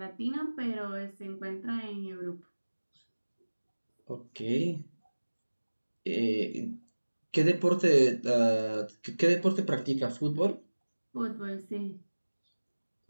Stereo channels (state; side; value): inverted; both; correlation -1.00